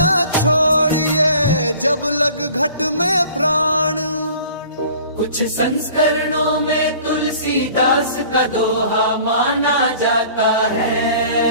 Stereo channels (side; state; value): both; inverted; correlation -0.49